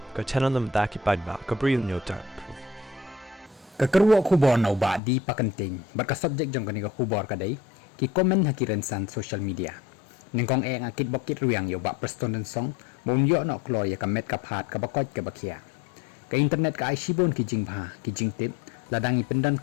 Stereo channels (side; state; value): right; drops out; at 5.0 s